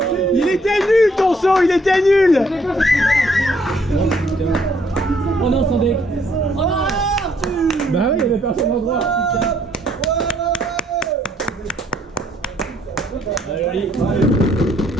Il était nul ton saut, il était nul. Oh non, sans deck. Oh non, Arthur. Bah oui, il y avait personne en droit. Allez,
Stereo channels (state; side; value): normal; both; correlation 0.67